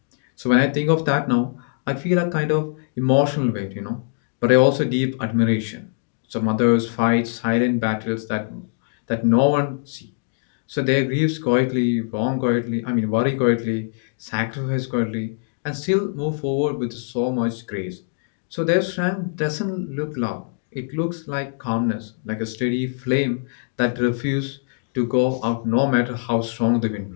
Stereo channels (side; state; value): right; silent; digital silence